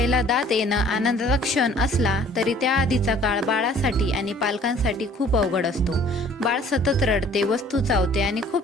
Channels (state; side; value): normal; both; correlation 0.54